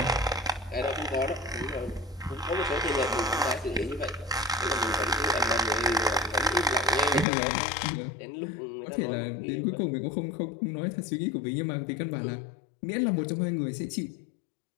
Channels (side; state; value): right; drops out; at 7.2 s